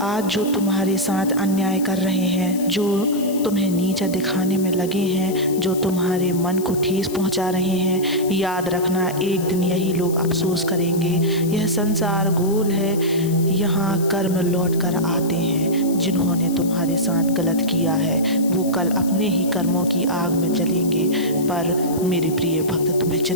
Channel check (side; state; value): left; noise; hiss, 14 dB below the sound